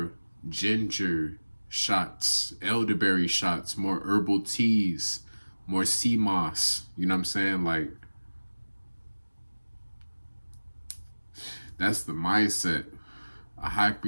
ginger shots, elderberry shots, more herbal teas, more sea moss, you know what I'm saying? Like, that's the mindset. A high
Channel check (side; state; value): both; inverted; correlation -1.00